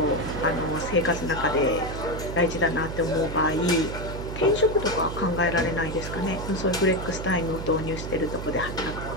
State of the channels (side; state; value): right; noise; hum, 7 dB below the sound